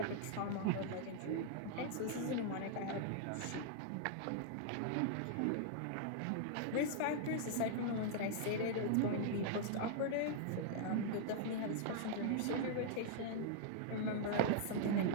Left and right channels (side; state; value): both; different; correlation -0.01